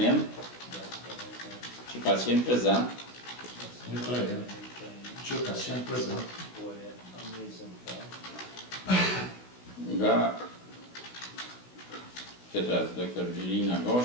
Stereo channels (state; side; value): late; right; 16 ms